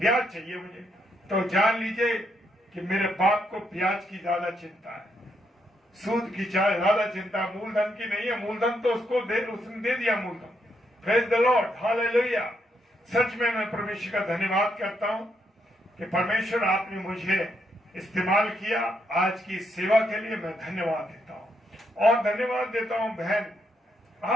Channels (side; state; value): both; normal; correlation 0.77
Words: चाहिए मुझे। तो जान लीजिए कि मेरे बाप को ब्याज की ज्यादा चिंता है, सूद की ज्यादा चिंता, मूलधन की नहीं है। मूलधन तो उसने दे दिया मूलधन। Praise the lord, hallelujah. सच में मैं परमेश्वर का धन्यवाद करता हूं कि परमेश्वर आपने मुझे इस्तेमाल किया आज की सेवा के लिए। मैं धन्यवाद देता हूं, और धन्यवाद देता हूं बहन